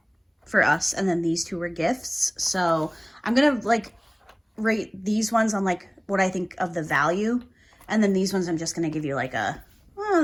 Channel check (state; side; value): identical; both; correlation 1.00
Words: for us, and then these two were gifts. So, I'm going to, like, rate these ones on, like, what I think of the value, and then these ones I'm just going to give you, like, a, oh,